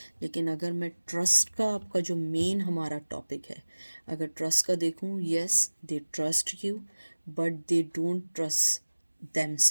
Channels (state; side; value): inverted; both; correlation -1.00